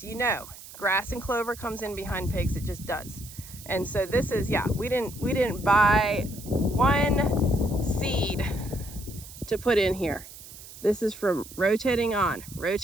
you know grass and clover comes in behind pigs. It just does. And so this is, yeah, we didn't buy one seed to put in here. This is from rotating on,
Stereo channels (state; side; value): noise; right; hiss, 16 dB below the sound